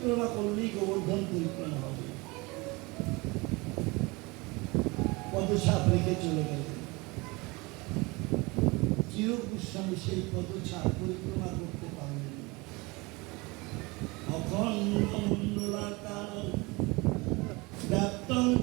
করলেই গোবর্ধন পরিক্রমা হবে। পদছাপ রেখে চলে গেল। চিরূপ গোস্বামী সেই পদছাপ পরিক্রমা করতে পারলেন না। অখণ্ড মণ্ডলাকার ব্যাপ্তং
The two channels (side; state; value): left; quieter; 25.0 dB